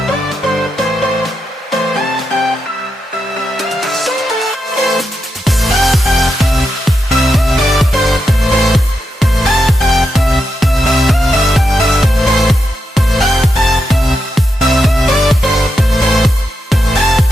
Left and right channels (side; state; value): both; normal; correlation 0.85